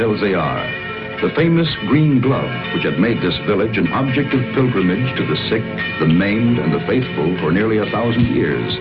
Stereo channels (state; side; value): identical; both; correlation 1.00